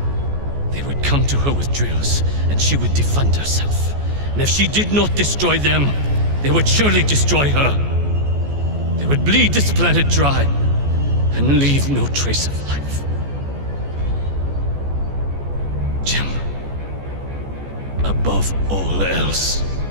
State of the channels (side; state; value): left; late; 14 ms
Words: They would come to her with drills, and she would defend herself. And if she did not destroy them, they would surely destroy her. They would bleed this planet dry, and leave no trace of life. Jim, above all else,